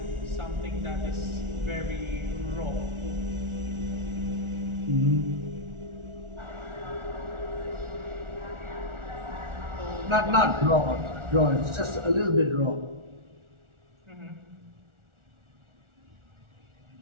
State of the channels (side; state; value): left; late; 1.4 ms